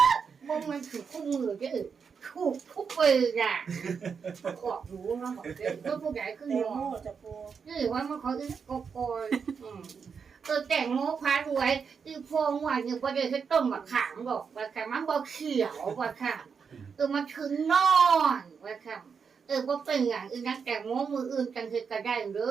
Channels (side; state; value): left; quieter; 6.1 dB